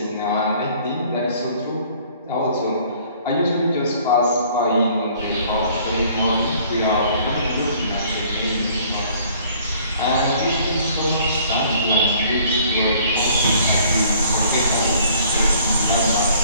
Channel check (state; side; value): inverted; both; correlation -0.57